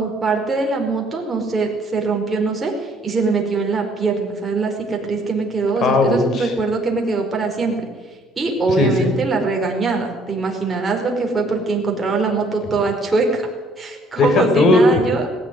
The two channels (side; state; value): both; normal; correlation 0.62